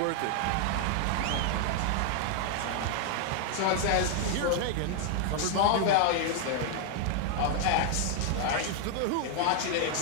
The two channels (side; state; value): both; different; correlation 0.00